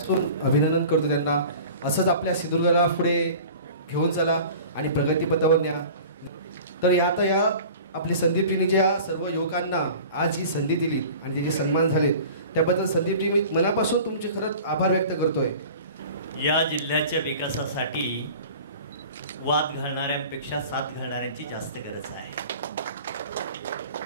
अभिनंदन करतो त्यांना। असंच आपल्या सिंधुदुर्गाला पुढे घेऊन चला आणि प्रगतीपथावर न्या। तर आता या आपली संदीप टीने ज्या सर्व युवकांना आज ही संधी दिली आणि त्याचे सन्मान झाले, त्याबद्दल संदीप टीने मनापासून तुमचे खरंच आभार व्यक्त करतोय। या जिल्ह्याच्या विकासासाठी वाद घालणाऱ्यांपेक्षा साथ घालणाऱ्यांची जास्त गरज आहे।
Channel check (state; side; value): inverted; both; correlation -0.41